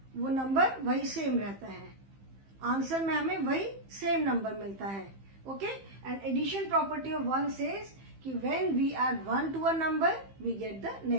वो नंबर वही सेम रहता है. आंसर में हमें वही सेम नंबर मिलता है. Okay, and addition property of 1 says कि when we add 1 to a number we get the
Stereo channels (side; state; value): left; late; 15 ms